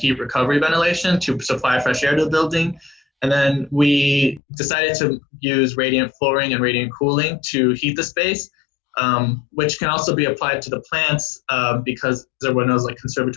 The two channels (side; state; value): right; drops out; at 4.4 s